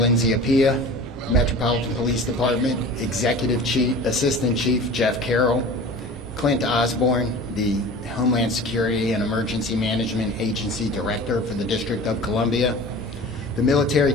Appiah, Metropolitan Police Department Executive Chief, Assistant Chief Jeff Carroll, Clint Osborne, the Homeland Security and Emergency Management Agency Director for the District of Columbia, the Military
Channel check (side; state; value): both; normal; correlation 0.39